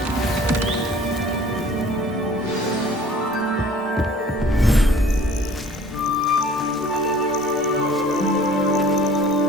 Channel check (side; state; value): both; normal; correlation 0.50